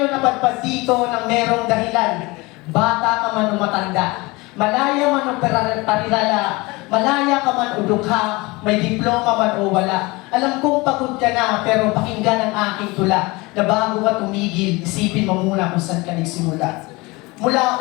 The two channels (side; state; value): right; quieter; 23.7 dB